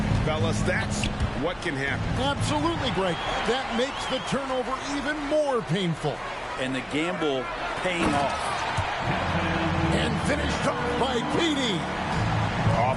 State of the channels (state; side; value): identical; both; correlation 1.00